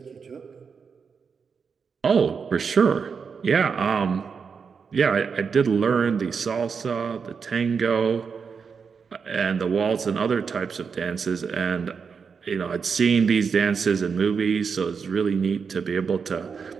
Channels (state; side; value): quieter; left; 5.8 dB